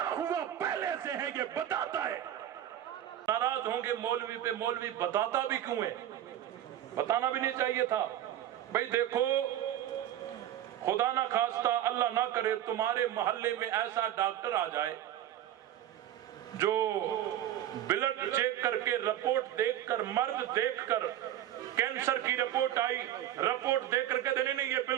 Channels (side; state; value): left; quieter; 11.9 dB